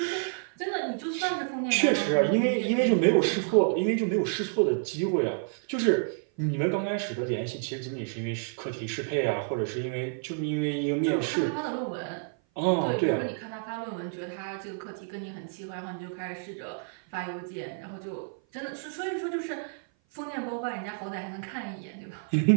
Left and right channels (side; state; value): left; silent; 55 dB below the other